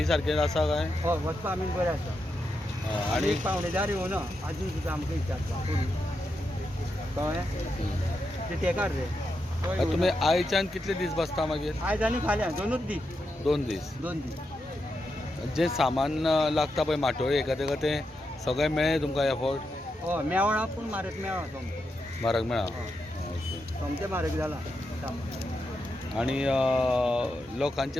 सारकें आसा काय? हय वचपाक आमी बरें आसा आनी एक पावणेदार येवना आजून सुद्दां आमकां विचारता कळ्ळें ते तेकार रे. तुमी आयच्यान कितले दीस बसता मागीर? आयज आनी फाल्यां दोनूच दीस. 2 दीस. 2 दीस. जे सामान लागता पळय माटोळी एका तें सगळें मेळ्ळें तुमकां एफोर्ट? हय मेवळा पूण म्हारग मेवळा सोमतें. म्हारग मेळ्ळा? सोमतें म्हारग जाला. आनी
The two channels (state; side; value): normal; both; correlation 0.85